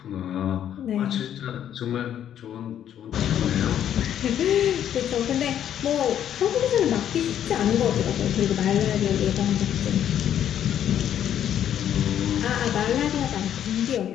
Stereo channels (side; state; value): right; quieter; 10.2 dB